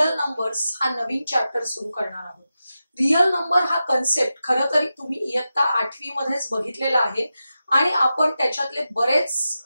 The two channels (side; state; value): both; inverted; correlation -0.91